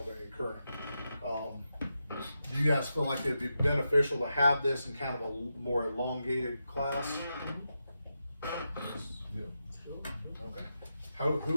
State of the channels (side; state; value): both; inverted; correlation -0.88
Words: current. Do you guys feel like it'd be beneficial to have this in kind of a more elongated class? Yeah. Okay.